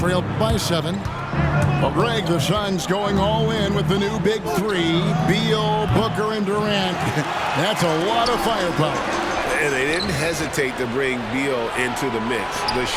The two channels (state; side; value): identical; both; correlation 1.00